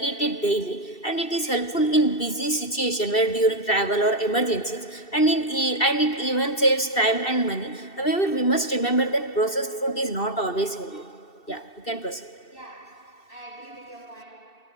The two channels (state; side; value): late; right; 2.7 ms